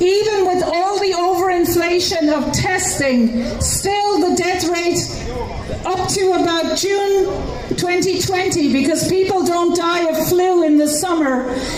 with all the overinflation of testing, still the death rate up to about June 2020, because people don't die of flu in the summer,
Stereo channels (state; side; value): identical; both; correlation 1.00